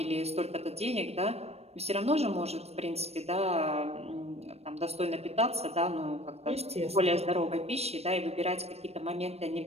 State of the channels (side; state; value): left; late; 0.30 ms